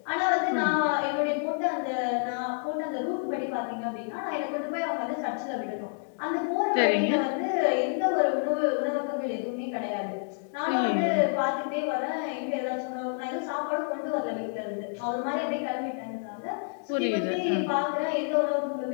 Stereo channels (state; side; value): silent; right; 59 dB below the other